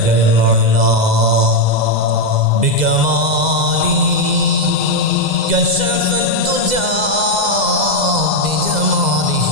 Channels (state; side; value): late; left; 2.0 ms